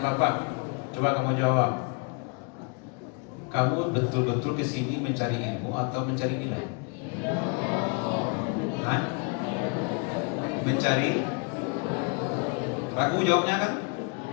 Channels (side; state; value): right; quieter; 35.1 dB